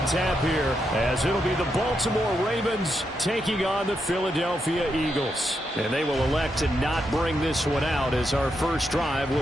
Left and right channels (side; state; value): both; normal; correlation 0.83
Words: tap here as it'll be the Baltimore Ravens taking on the Philadelphia Eagles. And they will elect to not bring this one out as our first drive